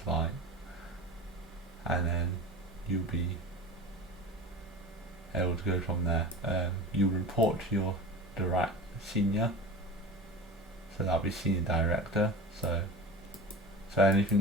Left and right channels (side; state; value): both; normal; correlation 0.34